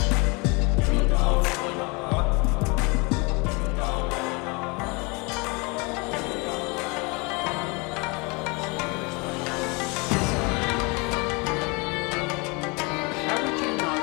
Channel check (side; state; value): right; quieter; 28.9 dB